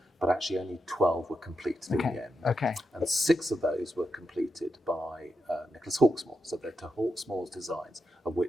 but actually only 12 were completed in the end. Okay. And 6 of those were completed by Nicholas Hawksmoor. So they're to Hawksmoor's designs, of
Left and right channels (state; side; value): normal; both; correlation 0.86